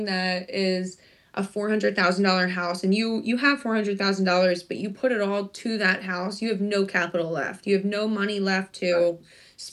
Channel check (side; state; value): both; identical; correlation 1.00